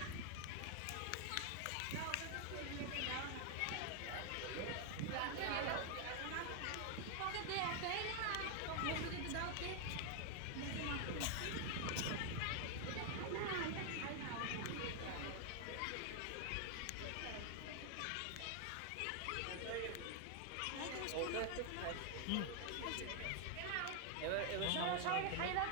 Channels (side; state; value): both; different; correlation 0.00